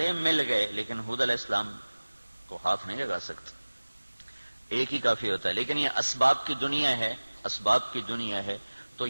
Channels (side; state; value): both; inverted; correlation -1.00